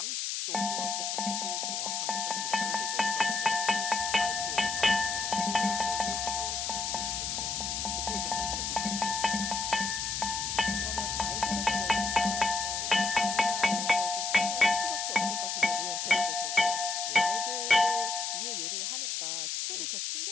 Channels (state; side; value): noise; left; hiss, 2 dB below the sound